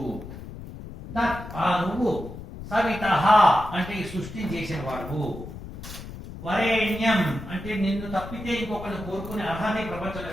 తత్ ఆ నువ్వు, సవితః అంటే ఈ సృష్టిని చేసిన వాడు, వరేణ్యం అంటే నిన్ను తప్పితే ఇంకొకరిని కోరుకునే అర్హత ప్రపంచంలో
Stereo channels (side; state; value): left; noise; rumble, 12 dB below the sound